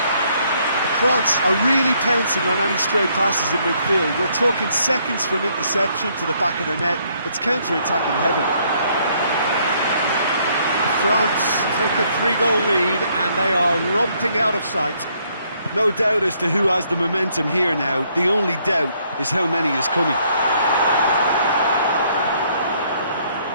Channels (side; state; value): both; inverted; correlation -0.68